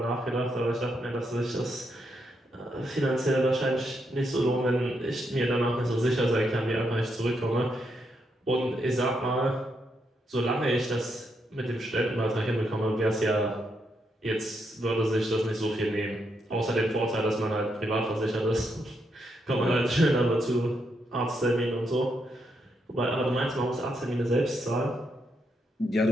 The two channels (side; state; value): both; normal; correlation 0.80